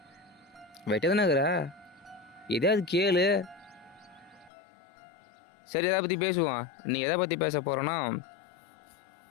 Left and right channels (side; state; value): right; drops out; at 4.5 s